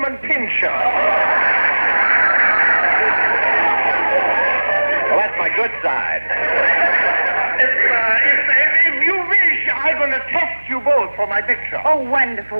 Pinscher. Well, that's my good side. If you wish, I'm going to test you both for my picture. Oh,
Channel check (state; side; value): inverted; both; correlation -1.00